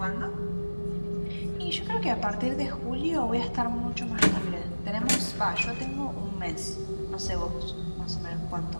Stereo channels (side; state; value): both; inverted; correlation -1.00